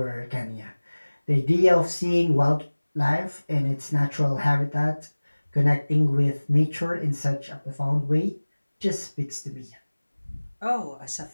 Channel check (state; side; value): inverted; both; correlation -1.00